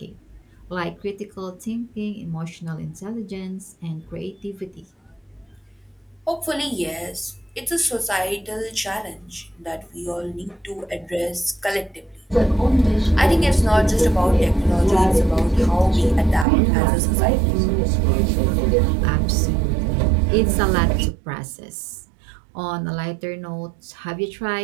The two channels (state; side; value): drops out; left; at 16.4 s